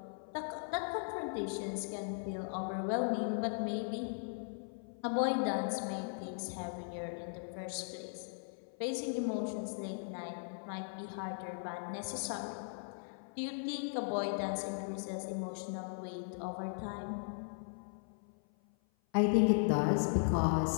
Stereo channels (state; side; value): silent; right; 52 dB below the other